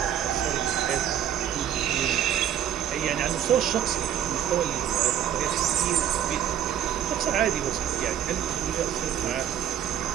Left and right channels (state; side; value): quieter; left; 10.1 dB